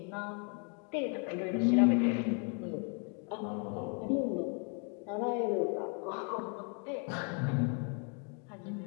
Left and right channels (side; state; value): right; quieter; 37.7 dB